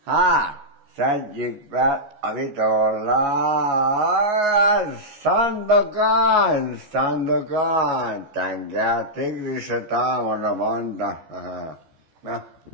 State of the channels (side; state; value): left; late; 14 ms